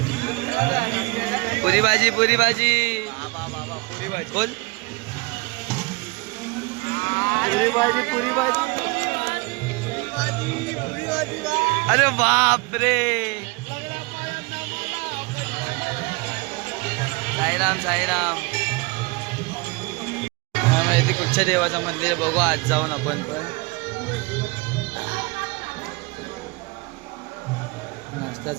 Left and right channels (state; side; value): quieter; left; 26.3 dB